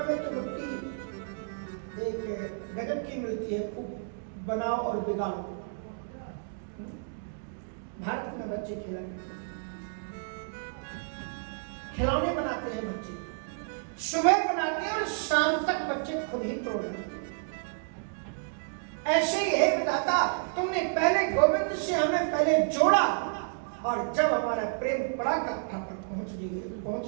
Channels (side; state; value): left; silent; digital silence